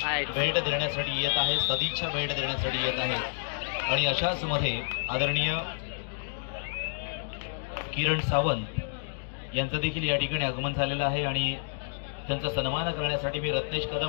भेट देण्यासाठी येत आहे, सदिच्छा भेट देण्यासाठी येत आहे. आणि अशाच मध्ये आदरणीय किरण सावंत यांचं देखील या ठिकाणी आगमन झालेलं आहे आणि त्यांचा सन्मान करण्यासाठी मी रत्नेश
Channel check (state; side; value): silent; right; digital silence